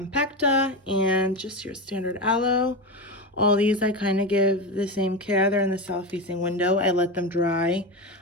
and just your standard aloe. All these I kind of give the same care. They're in the south facing window. I let them dry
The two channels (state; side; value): normal; both; correlation 0.18